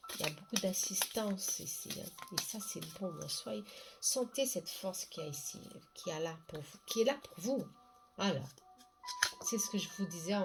Il y a beaucoup d'assistance ici, hein. Et ça, c'est bon. Soyez, sentez cette force qu'il y a ici, qui est là pour vous, qui est là pour vous. Alors, c'est ce que je vous disais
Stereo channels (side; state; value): both; identical; correlation 1.00